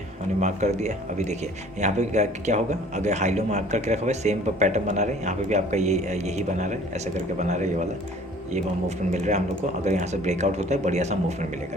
हमने मार्क कर दिया। अभी देखिए यहाँ पे क्या होगा, अगर हाई लो मार्क करके रखा हुआ है, सेम पैटर्न बना रहे हैं, यहाँ पे भी आपका यही बना रहा है, ऐसा करके बना रहा है, ये वाला ये मूवमेंट मिल रहा है हम लोग को। अगर यहाँ से ब्रेकआउट होता है, बढ़िया सा मूवमेंट मिलेगा।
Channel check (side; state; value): both; normal; correlation 0.51